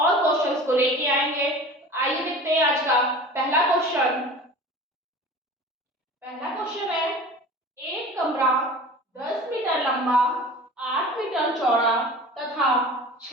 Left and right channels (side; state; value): both; normal; correlation 0.39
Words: क्वेश्चंस को लेके आएंगे। आइए देखते हैं आज का पहला क्वेश्चन। पहला क्वेश्चन है, एक कमरा 10 मीटर लंबा, 8 मीटर चौड़ा तथा